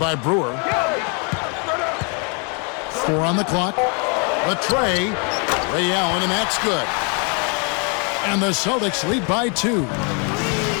Brewer. 4 on the clock. The tray. Ray Allen, and that's good. And the Celtics lead by 2.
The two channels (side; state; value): right; quieter; 36.2 dB